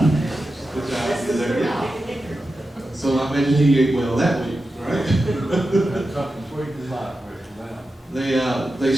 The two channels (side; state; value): both; normal; correlation 0.91